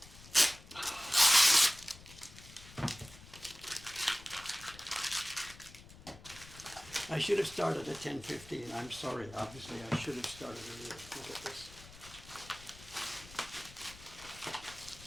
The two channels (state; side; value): noise; left; rumble, 19 dB below the sound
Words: I should have started at 10:15. I'm sorry. Obviously, I should have started earlier. Look at this.